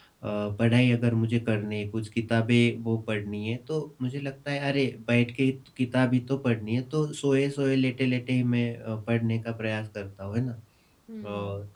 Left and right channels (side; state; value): both; identical; correlation 1.00